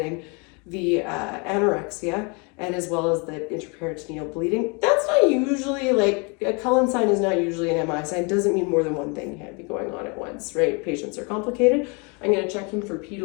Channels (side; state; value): right; quieter; 32.3 dB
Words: the anorexia, and as well as the interperitoneal bleeding. That's not usually, like, a Cullen sign is not usually an MI sign. Doesn't mean more than one thing can be going on at once, right? Patients are complicated. I'm going to check him for